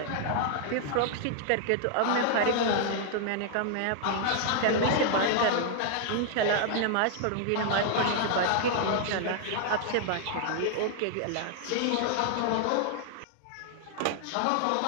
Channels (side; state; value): both; different; correlation 0.00